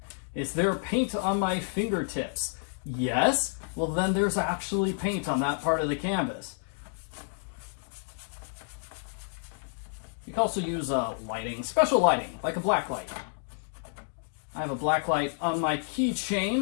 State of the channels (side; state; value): right; silent; digital silence